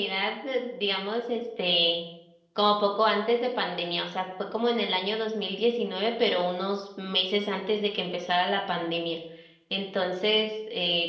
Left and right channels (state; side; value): identical; both; correlation 1.00